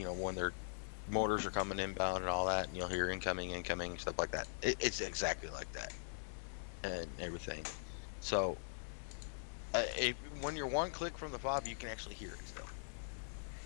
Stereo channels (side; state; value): right; silent; digital silence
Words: when their motors are coming inbound and all that, and you'll hear incoming, stuff like that. It's exactly like that, and everything. So when you're one click from the fob, you can actually hear it still.